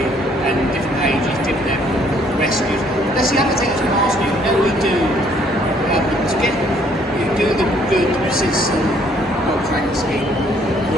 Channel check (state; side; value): normal; both; correlation 0.64